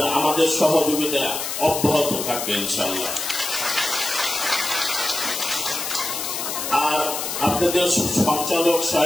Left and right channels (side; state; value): left; noise; hiss, 4 dB below the sound